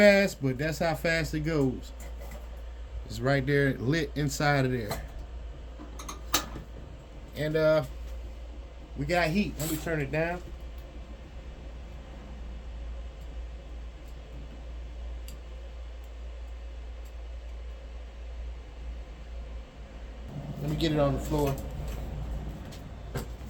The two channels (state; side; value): identical; both; correlation 1.00